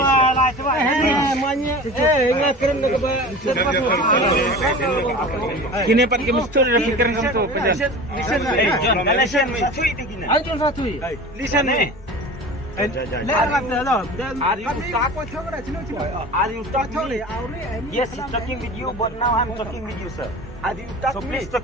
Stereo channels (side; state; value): both; normal; correlation 0.36